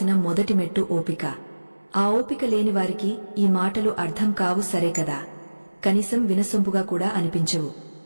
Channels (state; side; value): inverted; both; correlation -1.00